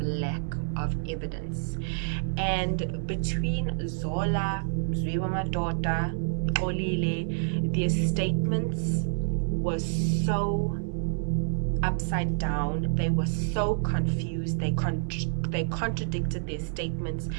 of evidence. And between Zola, Mzwiwa-Madota, Olile, their statements were so upside down. They were so confused. They contradicted their statements.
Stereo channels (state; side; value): silent; left; 59 dB below the other